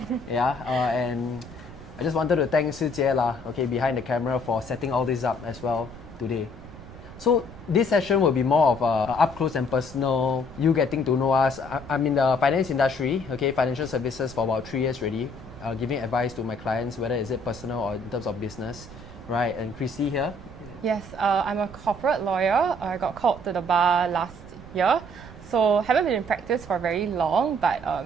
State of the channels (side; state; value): right; noise; rumble, 16 dB below the sound